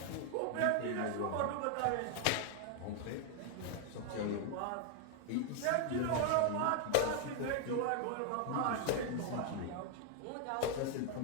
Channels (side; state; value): both; different; correlation 0.00